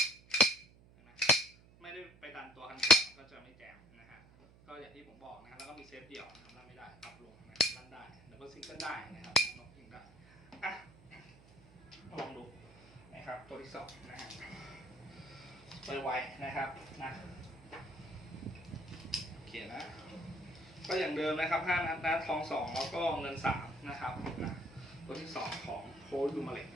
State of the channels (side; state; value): right; noise; hum, 24 dB below the sound